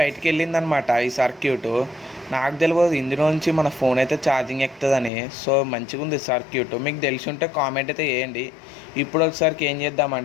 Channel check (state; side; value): drops out; right; at 5.1 s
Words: వెళ్ళిందనమాట ఈ సర్క్యూట్. నాకు తెలియదు ఇందులో నుంచి మన ఫోన్ అయితే ఛార్జింగ్ ఎక్కుతుందని. సో మంచిగా ఉంది సర్క్యూట్. మీకు తెలిసి ఉంటే కామెంట్ అయితే వేయండి. ఇప్పుడు ఒకసారికి ఏం